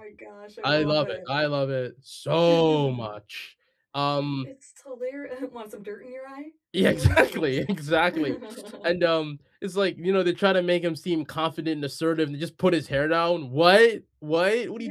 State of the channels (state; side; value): identical; both; correlation 1.00